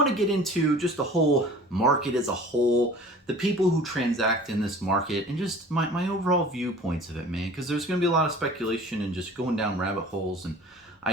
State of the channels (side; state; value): both; normal; correlation 0.44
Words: to get into just the whole market as a whole, the people who transact in this market, and just my overall viewpoints of it, man, because there's going to be a lot of speculation and just going down rabbit holes, and